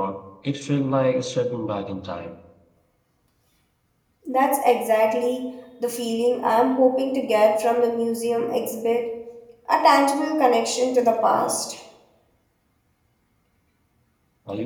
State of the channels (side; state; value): both; identical; correlation 1.00